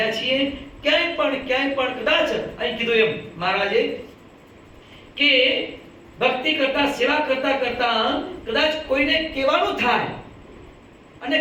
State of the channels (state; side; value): identical; both; correlation 1.00